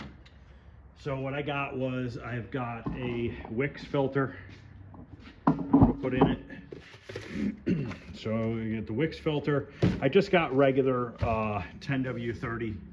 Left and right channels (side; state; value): both; identical; correlation 1.00